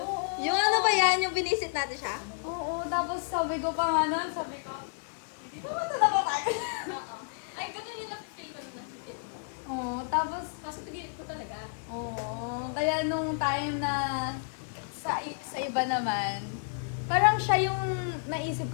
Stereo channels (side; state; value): right; silent; 57 dB below the other